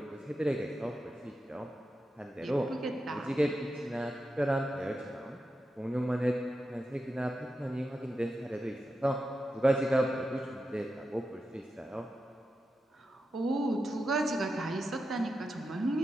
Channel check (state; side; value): normal; both; correlation 0.89